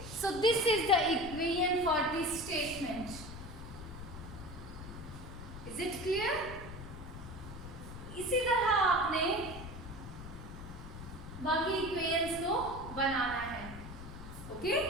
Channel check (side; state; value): left; noise; rumble, 11 dB below the sound